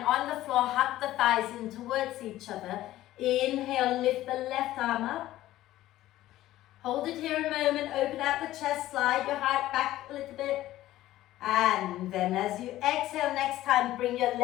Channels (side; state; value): right; quieter; 14.8 dB